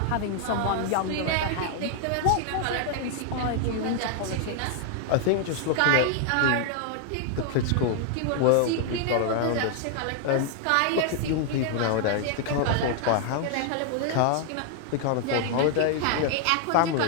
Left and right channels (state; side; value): different; both; correlation 0.00